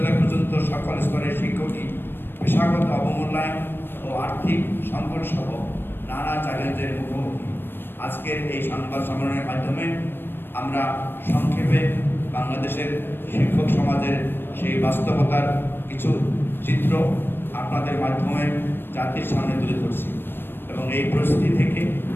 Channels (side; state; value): right; late; 0.099 ms